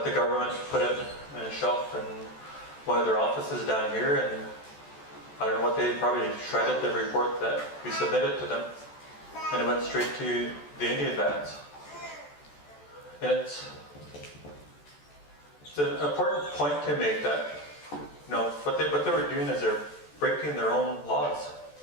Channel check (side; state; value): right; late; 14 ms